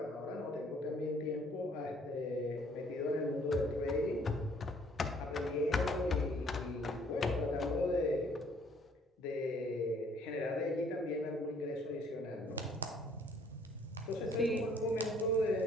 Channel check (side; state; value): both; normal; correlation 0.61